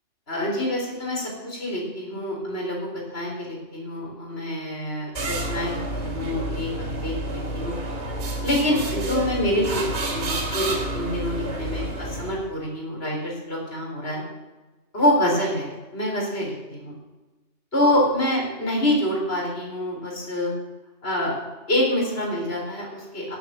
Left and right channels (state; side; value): late; right; 2.8 ms